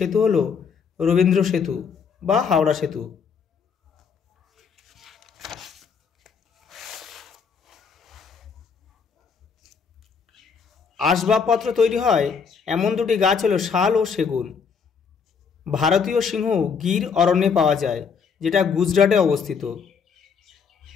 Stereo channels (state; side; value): quieter; right; 6.0 dB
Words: হলো রবীন্দ্র সেতু বা হাওড়া সেতু। আসবাবপত্র তৈরি হয় এমন দুটি গাছ হলো শাল ও সেগুন। ভারতীয় সিংহ গির অরণ্যে পাওয়া যায়, যেটা গুজরাটে অবস্থিত।